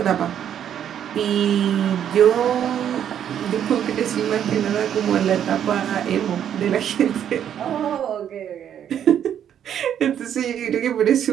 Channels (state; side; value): quieter; left; 9.5 dB